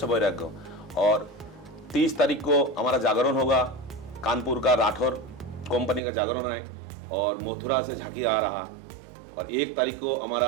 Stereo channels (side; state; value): left; drops out; at 6.0 s